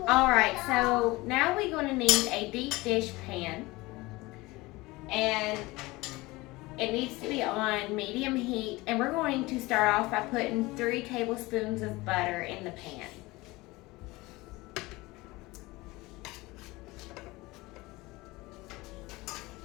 Alright, so now we're going to need a deep dish pan, and it needs to be on medium heat, and we're going to start off by putting 3 tablespoons of butter in the pan.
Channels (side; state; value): right; quieter; 21.4 dB